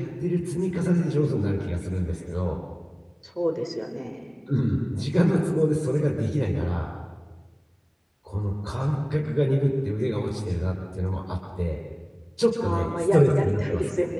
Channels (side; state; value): both; identical; correlation 1.00